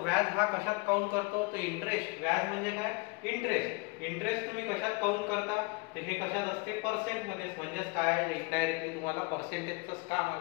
हा कशात काउंट करतो? तर इंटरेस्ट. व्याज म्हणजे काय? इंटरेस्ट. इंटरेस्ट तुम्ही कशात काउंट करता? तर हे कशात असते? पर्सेंट मध्ये. म्हणजेच काय? इनडायरेक्टली तुम्हाला पर्सेंटेजच काम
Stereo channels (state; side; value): quieter; right; 28.3 dB